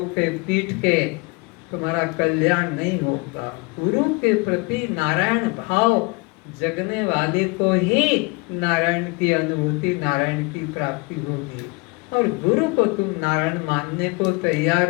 के पीट के, तुम्हारा कल्याण नहीं होगा। गुरु के प्रति नारायण भाव जगने वाले को ही नारायण की अनुभूति, नारायण की प्राप्ति होगी। और गुरु को तुम नारायण मानने को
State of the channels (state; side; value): quieter; right; 27.7 dB